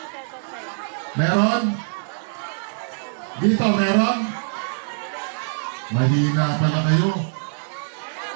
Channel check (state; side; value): silent; left; 63 dB below the other